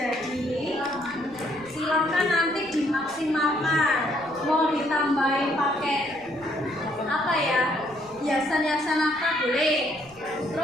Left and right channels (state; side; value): noise; right; rumble, 27 dB below the sound